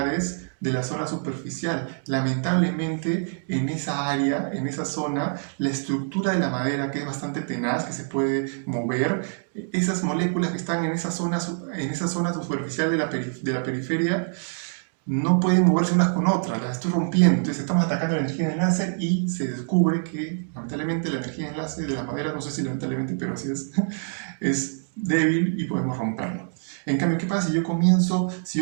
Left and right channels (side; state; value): left; silent; digital silence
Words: de la zona superficial. Lamentablemente, en esa área, en esa zona, la estructura de la madera, que es bastante tenaz, que se puede mover, esas moléculas que están en esa zona superficial de la periferia, no pueden moverse unas con otras, las estoy rompiendo. Entonces estamos atacando la energía de enlace y se descubre que, lamentablemente, la energía de enlace de la madera, no sé si lamentablemente, pero así es débil y podemos romperlo. En cambio, ¿qué pasa si